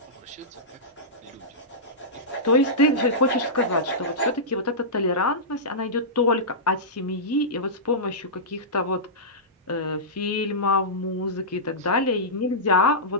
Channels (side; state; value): both; normal; correlation -0.15